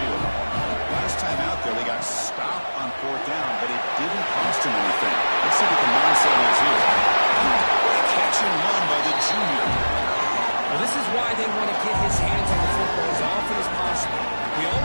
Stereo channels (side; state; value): both; inverted; correlation -1.00